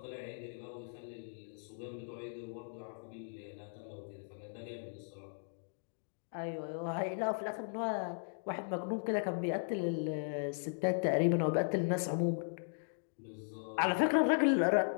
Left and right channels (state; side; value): silent; right; digital silence